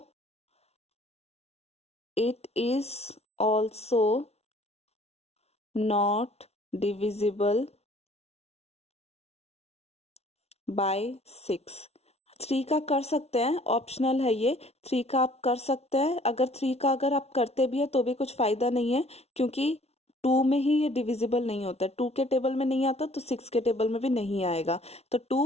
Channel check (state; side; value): late; right; 0.31 ms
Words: it is also not divisible by 6। 3 का कर सकते हैं, ऑप्शनल है ये, 3 का आप कर सकते हैं। अगर 3 का अगर आप करते भी है तो भी कुछ फायदा नहीं है, क्योंकि 2 में ही ये डिविजिबल नहीं होता है, 2 के टेबल में नहीं आता तो 6 के टेबल में भी नहीं आएगा, तो